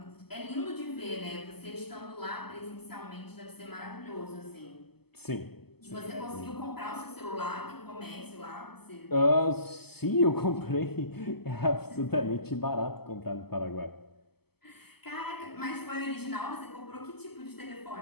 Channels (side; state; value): right; late; 0.96 ms